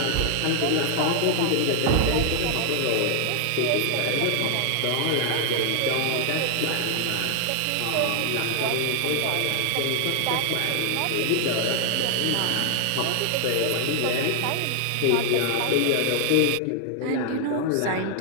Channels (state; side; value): different; both; correlation 0.00